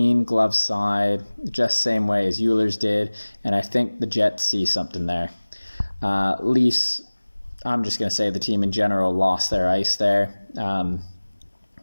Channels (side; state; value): both; inverted; correlation -1.00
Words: glove side, just same way as Eulers did, and I think the Jets see something there. Leafs, I'm just going to say the team in general lost their ice there.